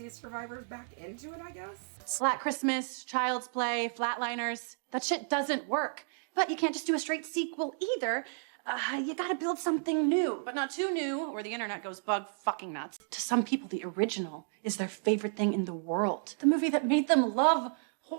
survivors back into it, I guess? Slack Christmas, Child's Play, Flatliners. That shit doesn't work. But you can't just do a straight sequel either. You gotta build something new, but not too new, or the internet goes bug fucking nuts. To some people, the original is their favorite thing in the world. The movie that made them love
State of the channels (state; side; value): silent; left; digital silence